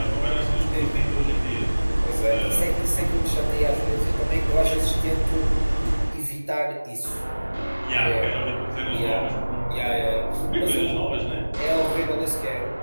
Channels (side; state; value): both; inverted; correlation -1.00